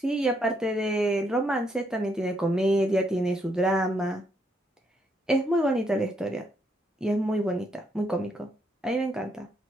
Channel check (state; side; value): normal; both; correlation 0.75